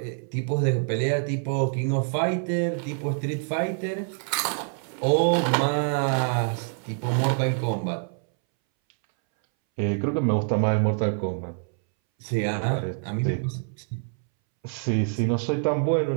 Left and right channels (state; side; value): silent; left; 61 dB below the other